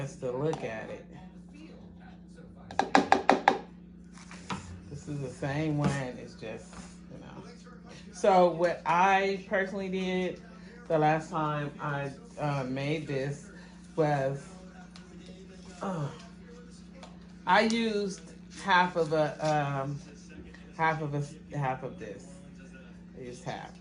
to look at it, this is the same one. It's just, you know. So what I personally did the last time I made this was I used half of this. I used half,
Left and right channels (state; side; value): identical; both; correlation 1.00